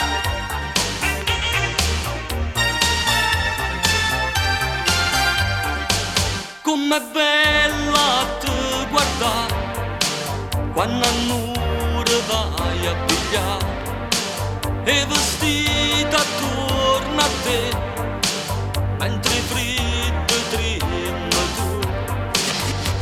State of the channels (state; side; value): identical; both; correlation 1.00